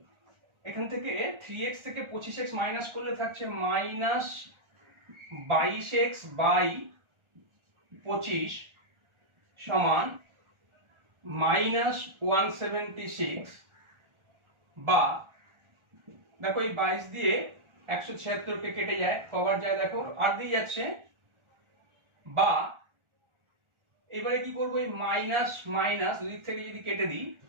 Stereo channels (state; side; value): late; left; 1.4 ms